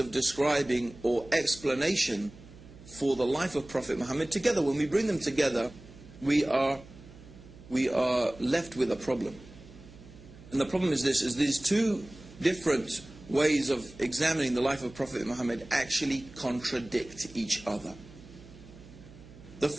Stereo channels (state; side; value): noise; right; hum, 19 dB below the sound